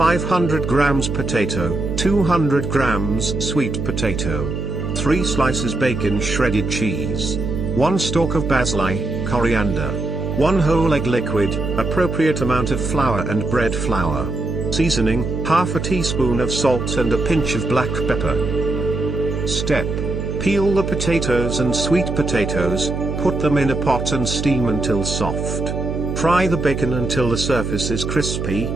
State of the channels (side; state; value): right; noise; hum, 3 dB below the sound